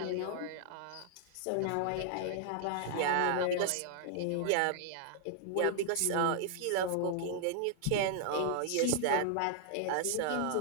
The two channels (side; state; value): both; different; correlation -0.01